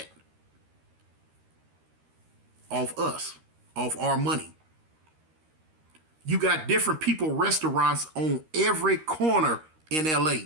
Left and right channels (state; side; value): late; left; 13 ms